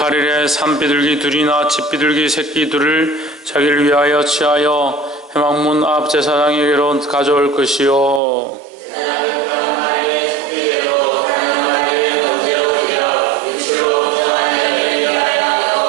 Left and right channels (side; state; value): left; drops out; at 8.2 s